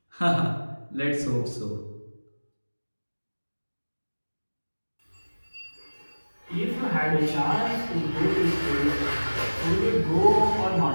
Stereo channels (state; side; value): inverted; both; correlation -1.00